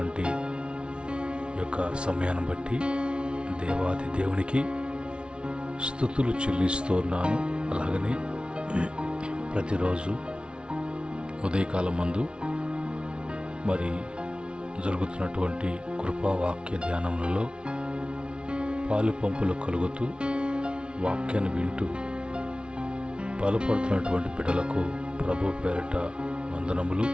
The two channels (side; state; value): left; late; 0.057 ms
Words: యొక్క సమయాన్ని బట్టి దేవాది దేవునికి స్తుతులు చెల్లిస్తున్నాను. అలాగనే ప్రతిరోజు ఉదయకాలం మందు మరి జరుగుతున్నటువంటి కృపావాక్య ధ్యానములలో పాలు పంపులు కలుగుతూ వాక్యాన్ని వింటూ బలపడుతున్నటువంటి బిడ్డలకు ప్రభు పేరిట వందనములు,